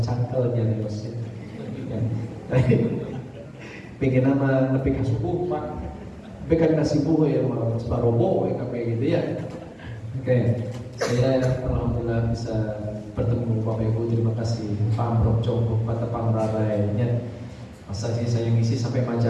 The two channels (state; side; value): identical; both; correlation 1.00